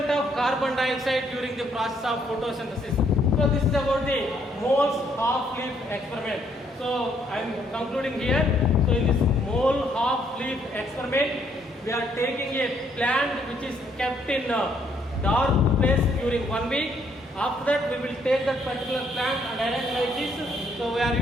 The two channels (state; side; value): normal; both; correlation 0.69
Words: of carbon dioxide during the process of photosynthesis. So this is about the moles half leaf experiment. So I am concluding here. So in this mole half leaf experiment, we are taking a plant which is kept in a dark place during 1 week. After that we will take that particular plant and arrange like this. So we are